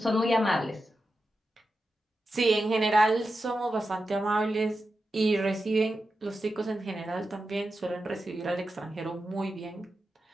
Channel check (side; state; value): both; normal; correlation 0.90